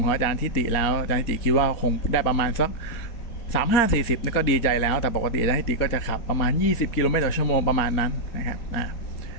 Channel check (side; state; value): right; late; 4.2 ms